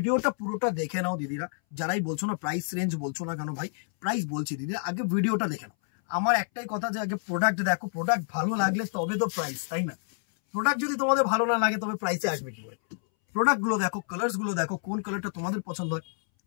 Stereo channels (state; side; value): silent; right; 59 dB below the other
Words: পুরোটা দেখে নাও দিদিরা। যারাই বলছো না প্রাইস রেঞ্জ বলছো না কেন ভাই, প্রাইস বলছি দিদিরা, আগে ভিডিওটা দেখে নাও। আমার একটাই কথা যে আগে প্রোডাক্ট দেখো, প্রোডাক্ট ভালো লাগলে তবে তো প্রাইস, তাই না? প্রোডাক্ট যদি তোমাদের ভালো না লাগে তবে প্রাইসে আসবে কি করে? প্রোডাক্টগুলো দেখো, কালার্সগুলো দেখো, কোন কালারটা তোমাদের পছন্দ হয়,